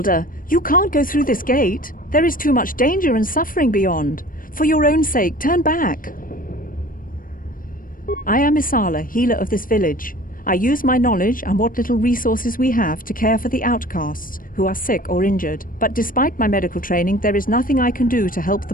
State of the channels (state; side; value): late; right; 0.40 ms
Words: You can't go through this gate. There is too much danger and suffering beyond. For your own sake, turn back. I am Isala, healer of this village. I use my knowledge and what little resources we have to care for the outcasts who are sick or injured. But despite my medical training, there is nothing I can do to help the